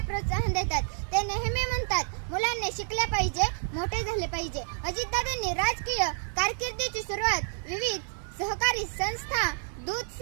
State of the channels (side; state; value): left; silent; 58 dB below the other